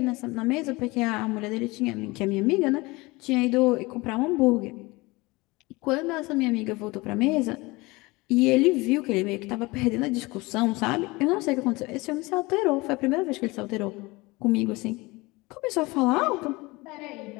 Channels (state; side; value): quieter; right; 23.0 dB